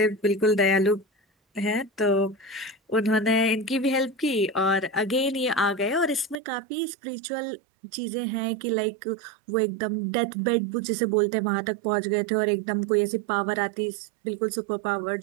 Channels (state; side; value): drops out; left; at 6.4 s